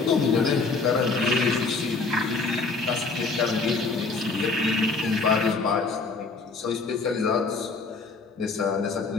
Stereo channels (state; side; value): quieter; right; 4.1 dB